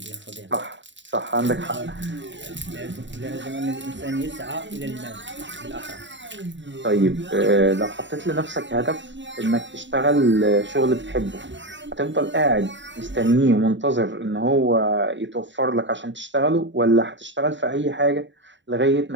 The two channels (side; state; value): left; late; 0.54 ms